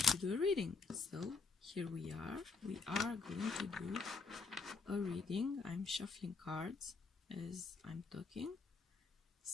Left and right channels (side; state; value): right; quieter; 4.4 dB